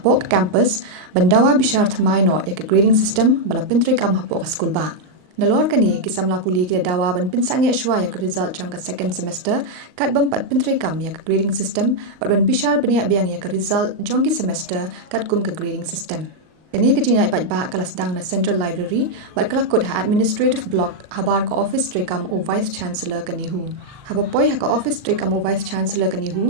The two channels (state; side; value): late; left; 39 ms